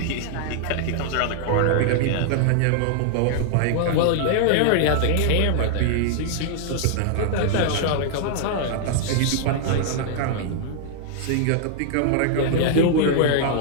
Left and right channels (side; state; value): both; different; correlation -0.01